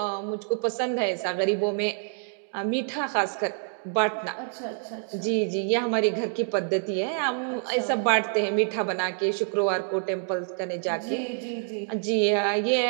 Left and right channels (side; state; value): left; silent; 59 dB below the other